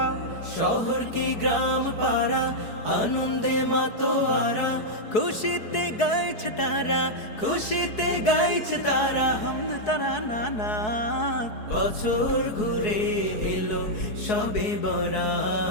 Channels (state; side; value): late; right; 4.7 ms